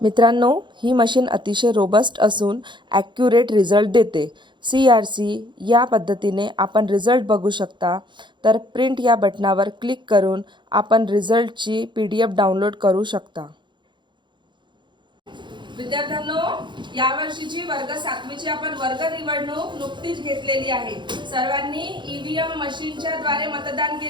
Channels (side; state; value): left; late; 0.23 ms